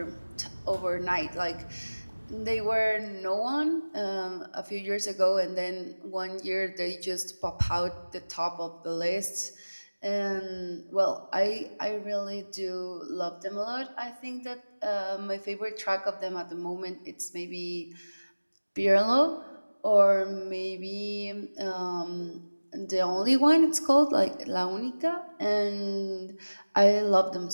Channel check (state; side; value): inverted; both; correlation -1.00